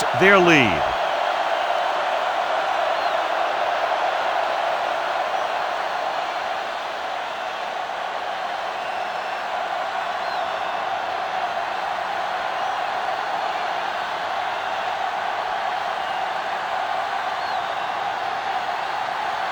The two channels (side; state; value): both; identical; correlation 1.00